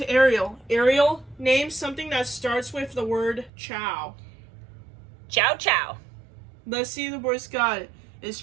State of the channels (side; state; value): left; drops out; at 3.5 s